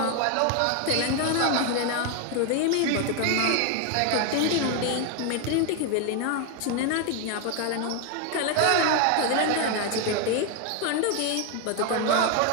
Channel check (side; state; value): both; different; correlation 0.01